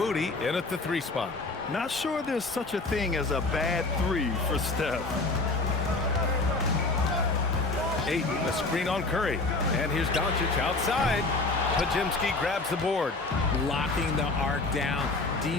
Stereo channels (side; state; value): right; quieter; 3.4 dB